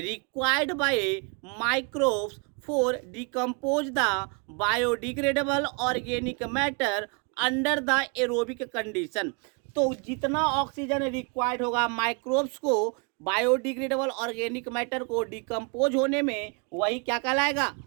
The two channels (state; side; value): quieter; left; 34.4 dB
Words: by microbes for decompose the biodegradable organic matter under the aerobic condition. तो जितना ऑक्सीजन रिक्वायर्ड होगा माइक्रोब्स को बायोडिग्रेडेबल ऑर्गेनिक मैटर को डिकम्पोज होने में, वही क्या कहलाएगा?